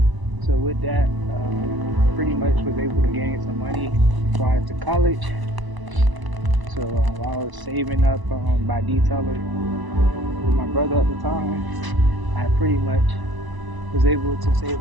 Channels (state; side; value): late; left; 1.0 ms